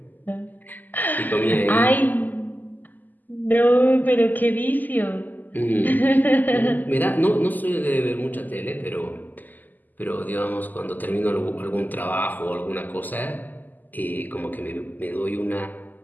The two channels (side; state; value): right; late; 0.085 ms